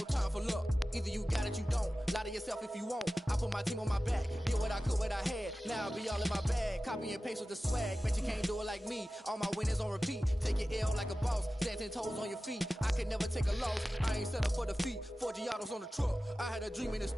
for luck. Either you got it, you don't. Lie to yourself if you won't. I put my team on my back, did what I could, what I had. Now I'll be all in my bag. Copy and paste with the swag. Bet you can't do it like me. All my winners on repeat. Take your L like a boss. Stand 10 toes on your feet. I can never take a loss. I ain't set up for defeat. 4 Giottos on the truck. I had a dream and it's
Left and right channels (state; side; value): normal; both; correlation 0.95